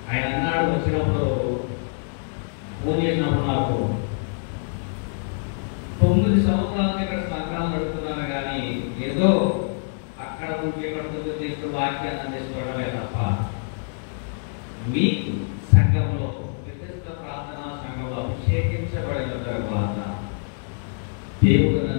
ఆయన అన్నాడు, వచ్చినప్పుడు ఫోన్ చేసినప్పుడు నాకు 9 సంవత్సరాలు ఇక్కడ సంఘాలు నడుపుతున్నాను, కానీ ఏదో అక్కడ నుంచి ఇక్కడ తీసుకు వాక్యాన్ని అందించుకోవడమే తప్ప మీకు సంఘంలో వ్యక్తిగత ప్రార్థనా సంఘంలో అభిషేకించబడిన తర్వాత దేవుడు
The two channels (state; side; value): silent; right; digital silence